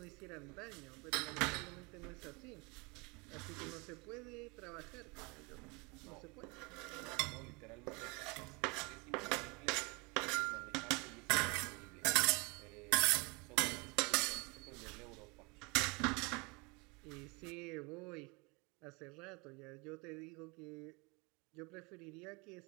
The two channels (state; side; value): quieter; left; 28.2 dB